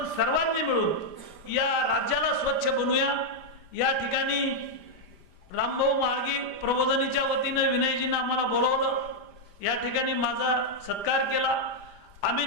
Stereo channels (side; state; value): right; late; 5.0 ms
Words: सर्वांनी मिळून या राज्याला स्वच्छ बनवूया. या ठिकाणी रामभाऊ म्हाळगी प्रबोधिनीच्या वतीनं विनयजींना आम्हाला बोलवलं, या ठिकाणी माझा सत्कार केला. आम्ही